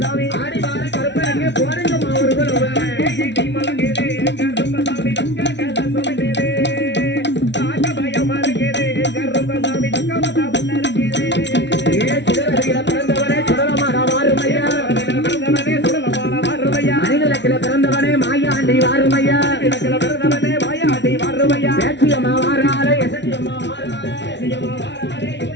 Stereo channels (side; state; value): right; late; 0.51 ms